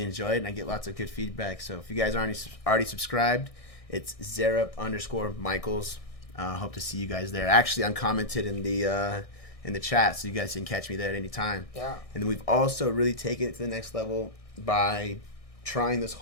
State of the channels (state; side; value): late; right; 1.6 ms